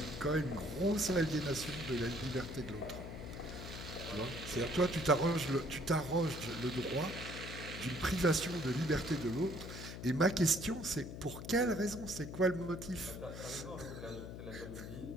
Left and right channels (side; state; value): left; noise; hum, 9 dB below the sound